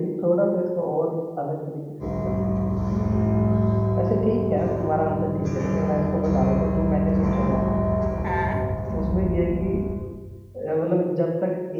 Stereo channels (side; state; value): both; identical; correlation 1.00